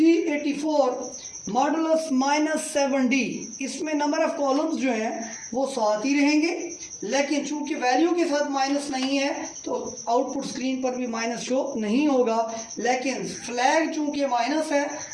मॉडुलस -7D, इसमें नंबर ऑफ कॉलम्स जो हैं वो 7 ही रहेंगे, लेकिन चूंकि वैल्यू के साथ माइनस नहीं है तो आउटपुट स्क्रीन पर भी माइनस शो नहीं होगा, लेकिन फ्लैग चूंकि माइनस है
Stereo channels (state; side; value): identical; both; correlation 1.00